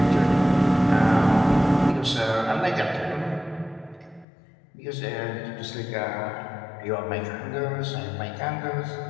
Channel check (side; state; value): right; drops out; at 4.2 s